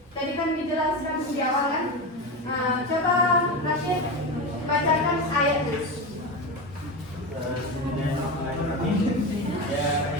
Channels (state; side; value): normal; both; correlation 0.20